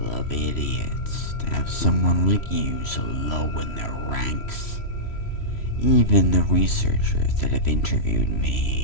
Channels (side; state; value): right; late; 3.1 ms